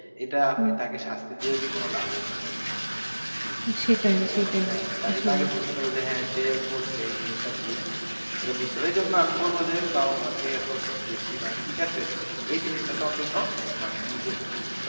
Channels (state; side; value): inverted; both; correlation -1.00